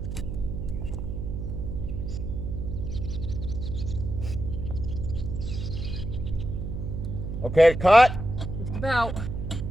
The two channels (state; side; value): noise; right; hum, 5 dB below the sound